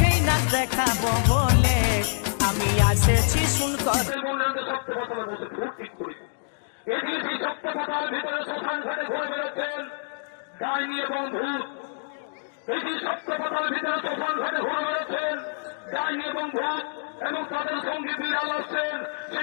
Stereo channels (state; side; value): silent; right; digital silence